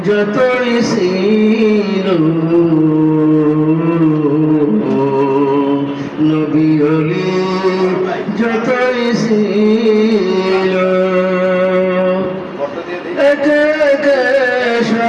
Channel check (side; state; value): both; identical; correlation 1.00